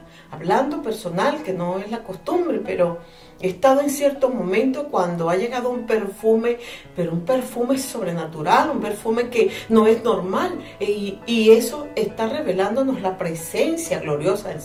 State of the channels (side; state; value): both; identical; correlation 1.00